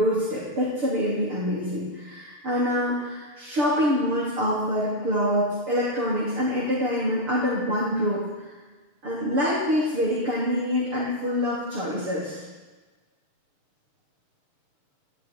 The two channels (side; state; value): left; late; 6.8 ms